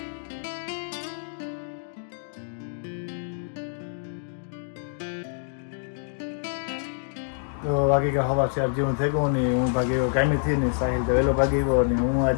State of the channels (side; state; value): right; silent; digital silence